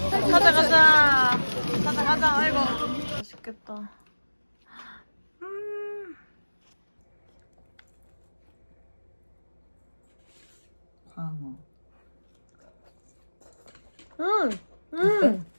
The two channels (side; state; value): both; inverted; correlation -1.00